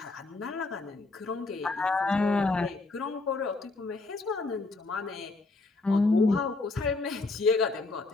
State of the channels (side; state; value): right; quieter; 3.5 dB